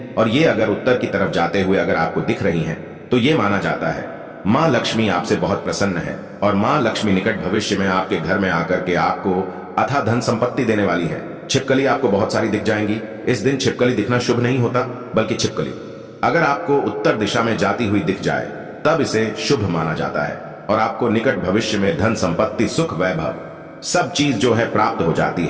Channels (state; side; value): identical; both; correlation 1.00